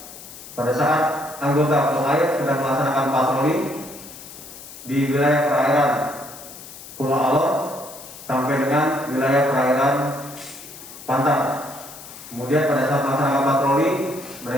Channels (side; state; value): left; noise; hiss, 15 dB below the sound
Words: pada saat anggota Polairut sedang melaksanakan patroli di wilayah perairan Pulau Alor sampai dengan wilayah perairan Pantar. Kemudian pada saat melaksanakan patroli